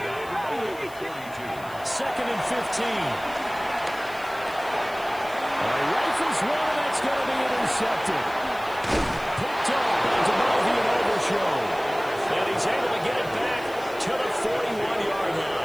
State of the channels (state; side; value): noise; left; hiss, 21 dB below the sound